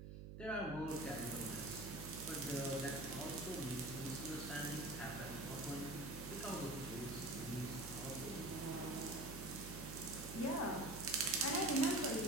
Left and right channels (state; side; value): noise; right; hum, 9 dB below the sound